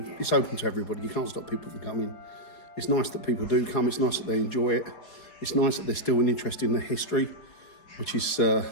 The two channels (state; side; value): late; right; 5.0 ms